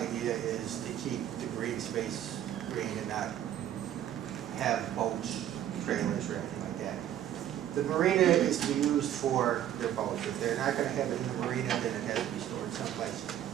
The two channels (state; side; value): quieter; left; 11.1 dB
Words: is to keep the green space green and not have boats, trailers, or anything like that. The marina is to be used for their boats. If they're not going to have it in the marina, then it has to be stored someplace.